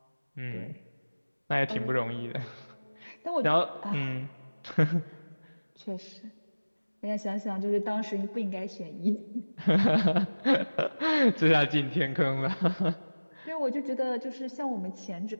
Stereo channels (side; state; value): both; inverted; correlation -1.00